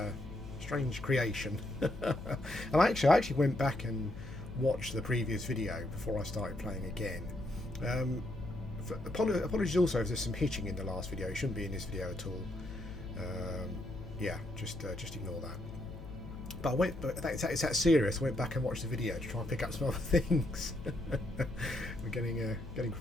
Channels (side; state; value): left; noise; hum, 11 dB below the sound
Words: creation. And I actually went back and watched the previous video before I started playing again. Apologies also if there's some hitching in the last video. It shouldn't be in this video at all. Yeah, just ignore that. But it's that serious. I went back and watched the video to try and pick up some other things. We're getting